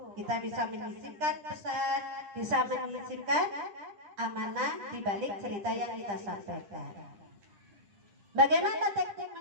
kita bisa menyisipkan pesan, bisa menyisipkan amanah di balik cerita yang kita sampaikan. Bagaimana teknik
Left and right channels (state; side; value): late; left; 10 ms